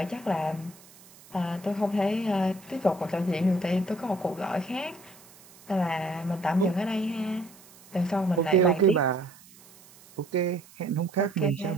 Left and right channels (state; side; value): noise; right; hiss, 24 dB below the sound